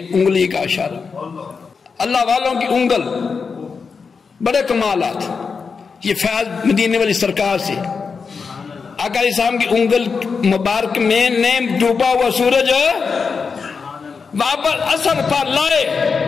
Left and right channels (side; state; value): right; quieter; 5.3 dB